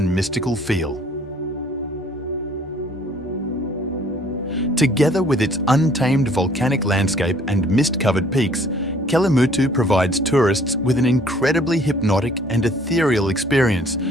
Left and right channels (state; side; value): normal; both; correlation 0.58